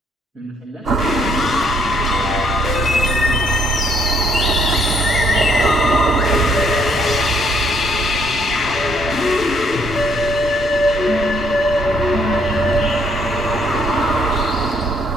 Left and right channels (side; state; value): both; normal; correlation 0.68